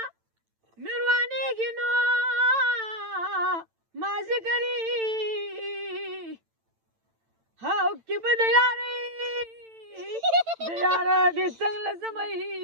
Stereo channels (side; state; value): left; late; 9.0 ms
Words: مې روانېږي نو مازدیګري هاو کې به د یارۍ د یاره دې څنګ له زمۍ